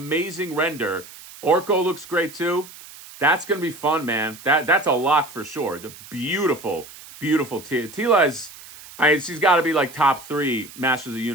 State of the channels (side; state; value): right; noise; hiss, 18 dB below the sound